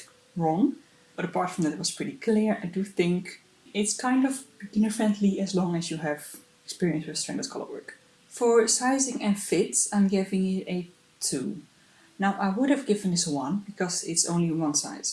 wrong. But apart from that, it was pretty clear. I do think it's kind of beginner friendly as long as you have experience with stranded color work. For sizing and fit, I'm giving it a 2. Now I would have given this a 1 because it's only one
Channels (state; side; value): identical; both; correlation 1.00